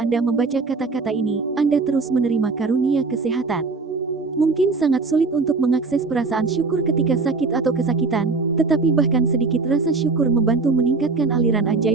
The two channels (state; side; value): quieter; left; 4.1 dB